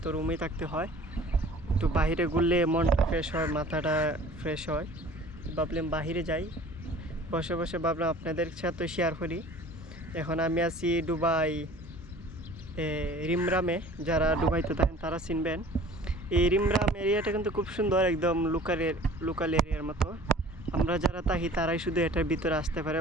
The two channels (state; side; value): normal; both; correlation 0.47